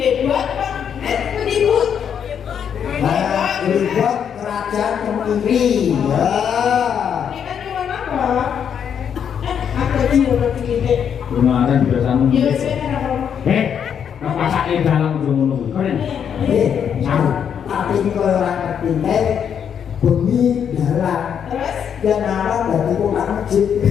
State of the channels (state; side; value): quieter; right; 8.1 dB